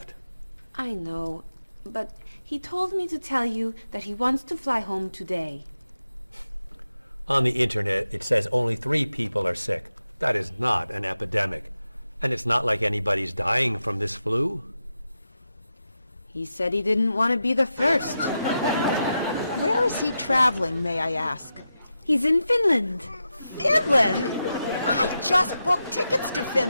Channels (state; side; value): inverted; both; correlation -0.89